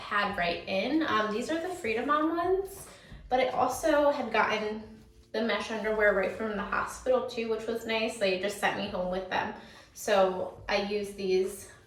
right in. These are the Freedom On ones, but I also had gotten the mesh underwear right from the hospital too, which was nice. They just sent me home with them. So I use these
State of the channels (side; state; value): both; identical; correlation 1.00